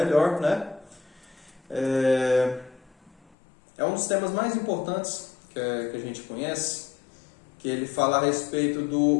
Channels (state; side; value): drops out; right; at 3.2 s